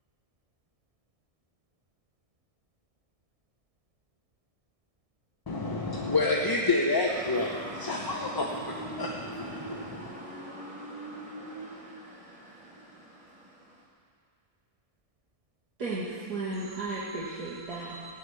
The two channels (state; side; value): late; left; 1.6 ms